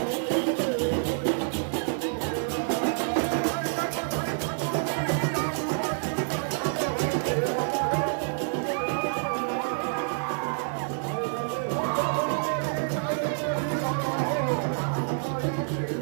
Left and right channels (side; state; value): left; silent; digital silence